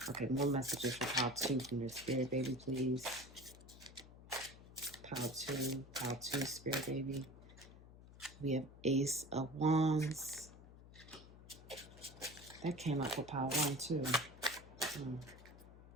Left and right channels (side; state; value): left; noise; hum, 18 dB below the sound